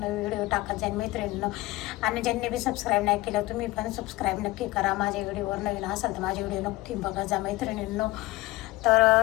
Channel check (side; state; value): right; quieter; 19.4 dB